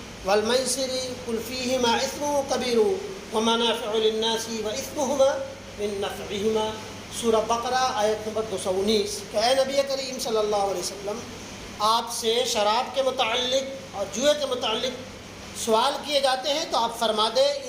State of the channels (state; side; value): identical; both; correlation 1.00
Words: والمیسر قل فیہما اثم کبیر ومنافع للناس واثمہما من نفعہما، سورہ بقرہ آیت نمبر 219 کہ اے نبی کریم صلی اللہ علیہ وسلم، آپ سے شراب کے متعلق اور جوئے کے متعلق سوال کیے جاتے ہیں تو آپ فرما دیں